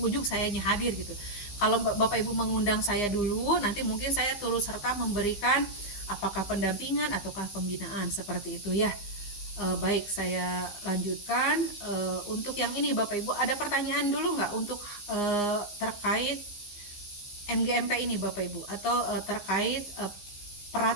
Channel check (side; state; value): right; late; 15 ms